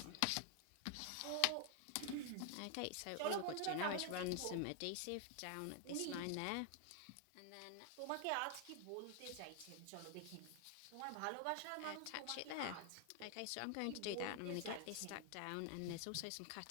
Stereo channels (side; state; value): both; different; correlation 0.00